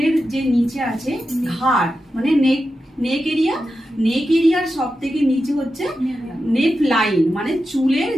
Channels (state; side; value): normal; both; correlation 0.90